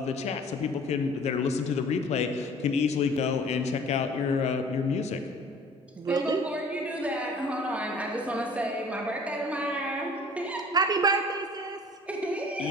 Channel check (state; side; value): normal; both; correlation 0.49